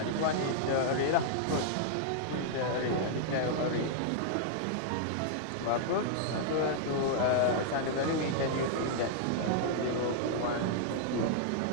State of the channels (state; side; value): different; both; correlation -0.01